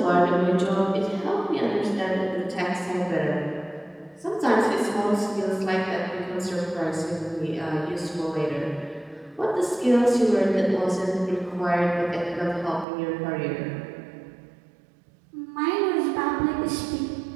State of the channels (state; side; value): drops out; left; at 12.9 s